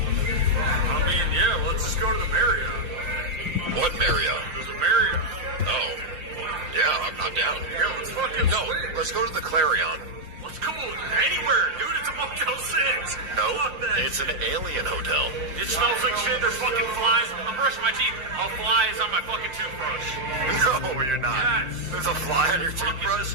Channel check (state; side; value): late; left; 5.7 ms